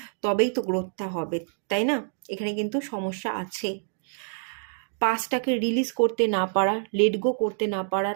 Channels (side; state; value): left; silent; digital silence